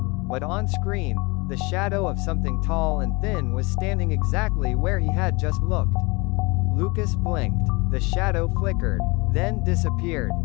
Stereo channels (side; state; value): right; quieter; 26.5 dB